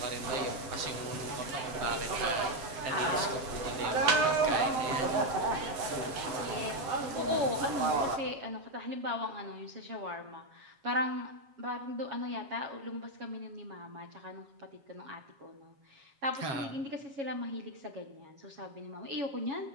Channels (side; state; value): left; late; 7.3 ms